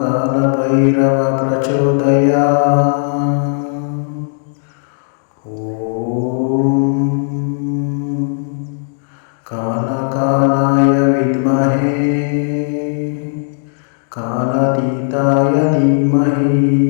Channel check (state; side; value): silent; right; digital silence